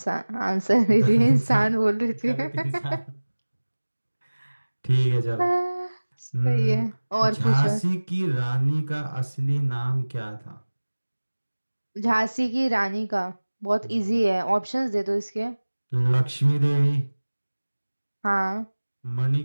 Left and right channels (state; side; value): inverted; both; correlation -1.00